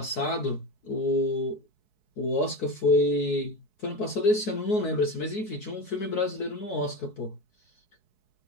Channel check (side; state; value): right; late; 4.7 ms